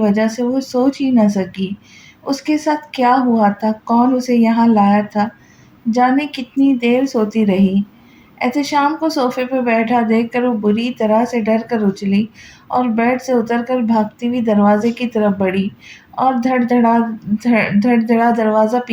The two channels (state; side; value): identical; both; correlation 1.00